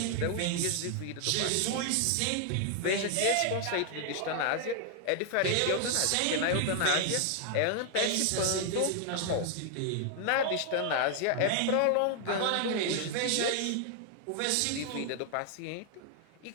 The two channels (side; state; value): both; different; correlation 0.00